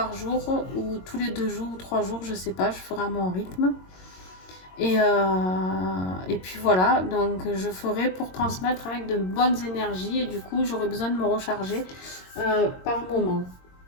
jour ou tous les 2 jours ou 3 jours, je sais pas, je ferai à mon rythme. Et puis voilà, donc je ferai pour transmettre avec de bonnes énergies et du coup j'aurai besoin de me recharger par moment.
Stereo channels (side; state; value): right; late; 22 ms